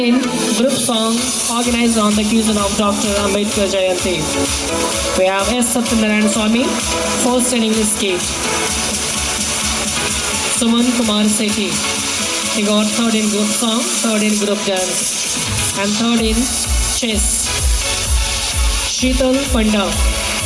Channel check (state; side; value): identical; both; correlation 1.00